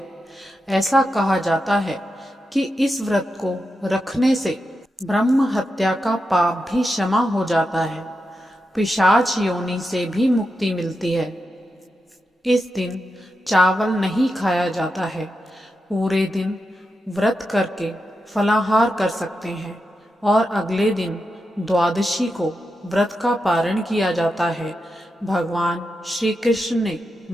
ऐसा कहा जाता है कि इस व्रत को रखने से ब्रह्म हत्या का पाप भी क्षमा हो जाता है, पिशाच योनि से भी मुक्ति मिलती है। इस दिन चावल नहीं खाया जाता है। पूरे दिन व्रत करके फलाहार कर सकते हैं और अगले दिन द्वादशी को व्रत का पारण किया जाता है। भगवान श्री कृष्ण ने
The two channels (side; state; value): both; normal; correlation 0.88